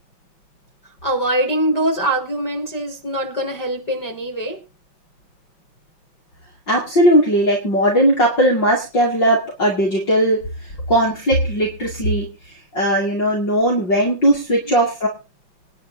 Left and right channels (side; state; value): right; late; 5.5 ms